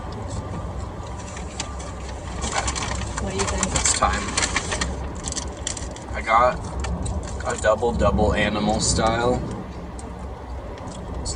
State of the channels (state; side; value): identical; both; correlation 1.00